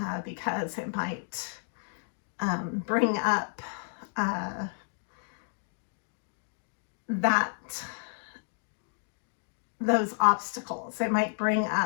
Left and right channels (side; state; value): right; silent; digital silence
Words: because it might bring up those obstacles. It might bring